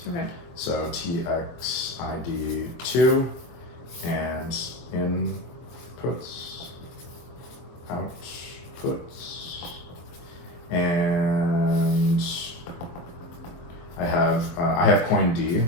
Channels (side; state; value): right; late; 23 ms